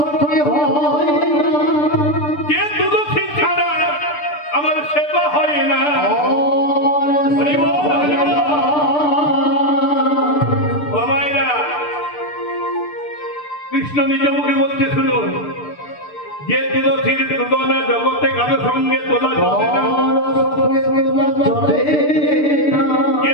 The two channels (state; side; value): late; right; 6.8 ms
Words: যে তুলসী ছাড়া আমার সেবা হয় না। কৃষ্ণ নিজ মুখে বলছে, শুনুন, যে তুলসীর তুলনা জগতে কারো সঙ্গে তোলা চলে না, যে